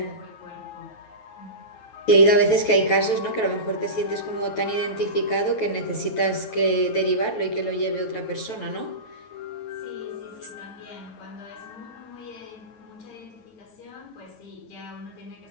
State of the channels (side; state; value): right; late; 9.2 ms